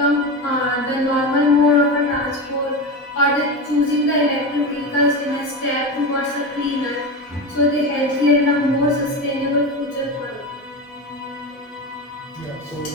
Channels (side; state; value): both; normal; correlation 0.22